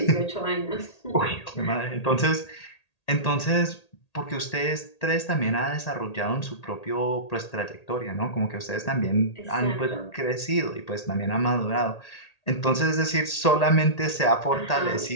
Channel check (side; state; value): right; late; 1.8 ms